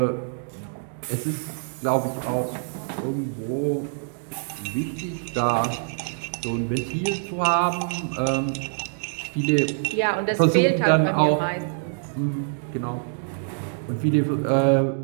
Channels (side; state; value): left; silent; digital silence